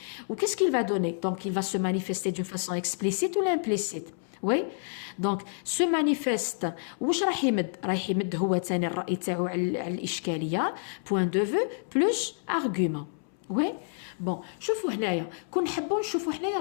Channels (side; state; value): right; silent; 59 dB below the other